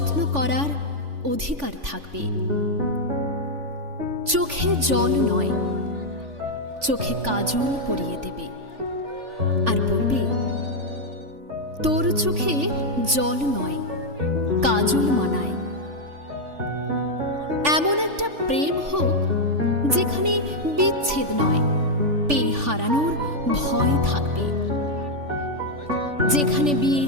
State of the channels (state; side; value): late; left; 3.5 ms